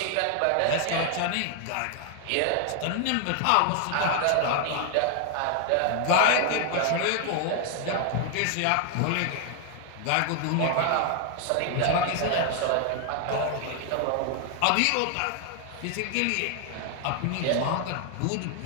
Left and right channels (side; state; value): both; different; correlation 0.00